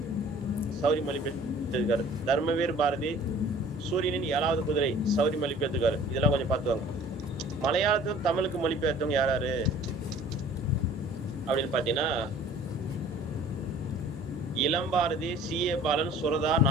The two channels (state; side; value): normal; both; correlation 0.50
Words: சௌரி மொழிபெயர்த்திருக்காரு. தர்மவீர் பாரதி சூரியனின் 7வது குதிரை சௌரி மொழிபெயர்த்திருக்காரு. இதெல்லாம் கொஞ்சம் பார்த்துவாங்க. மலையாளத்துக்கும் தமிழுக்கு மொழிபெயர்த்தவங்க யாராரு அப்படின்னு பாத்தீங்கன்னா, இளம்பாரதி, சி.ஏ. பாலன், சுரதா,